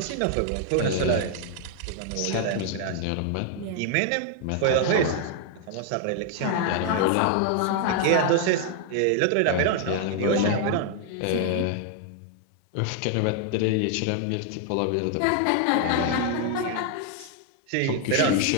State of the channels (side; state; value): both; different; correlation 0.00